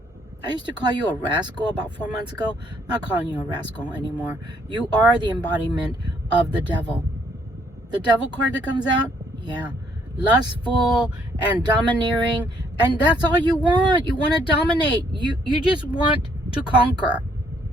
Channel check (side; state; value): both; normal; correlation 0.67